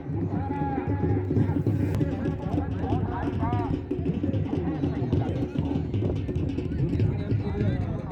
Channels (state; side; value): identical; both; correlation 1.00